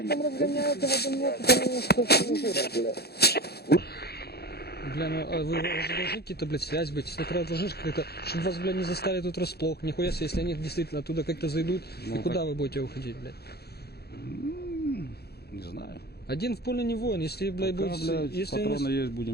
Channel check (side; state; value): right; late; 0.47 ms